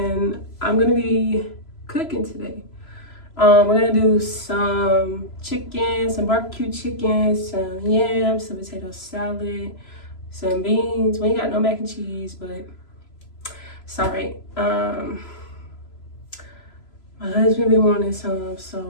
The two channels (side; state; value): right; late; 3.0 ms